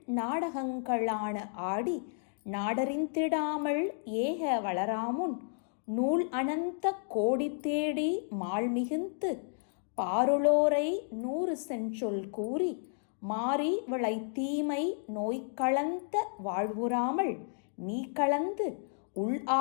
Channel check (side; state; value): right; silent; digital silence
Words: நாடகங்களான ஆடி நாடறிந்திடாமல் ஏக வளராமுன் நூல் அனந்த கோடி தேடி மால் மிகுந்து பாருளோரை 100 செஞ்சொல் கூறி மாறி விளை தீமை நோய் கலந்த வாழ்வுறாமல் நீ கலந்து உள்